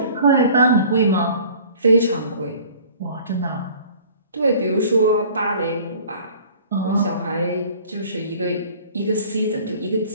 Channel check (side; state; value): both; inverted; correlation -0.49